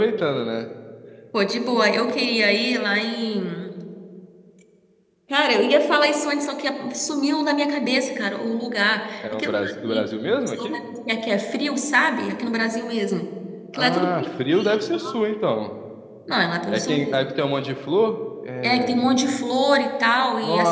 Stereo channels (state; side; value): identical; both; correlation 1.00